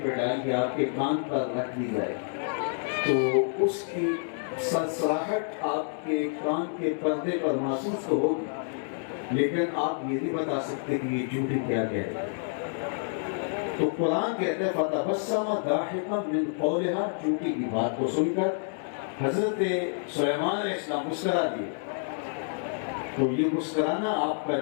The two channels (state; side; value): silent; right; digital silence